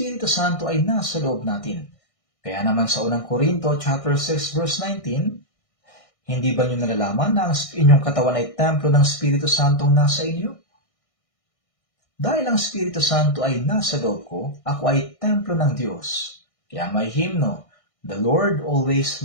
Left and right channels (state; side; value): late; right; 1.6 ms